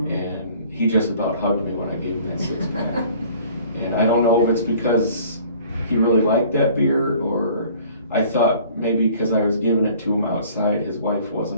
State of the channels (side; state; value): both; inverted; correlation -0.52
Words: And he just about hugged me when I gave him that 6-pack. And I don't know if it's because he really liked that beer, or I thought maybe because I was giving it to him outside, his wife